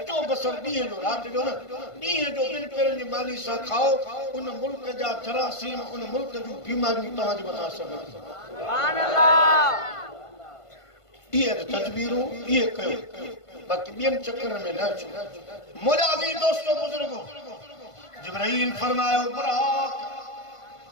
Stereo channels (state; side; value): late; right; 1.5 ms